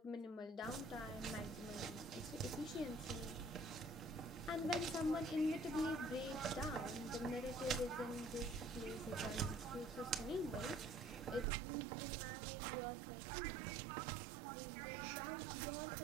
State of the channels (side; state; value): left; drops out; at 11.5 s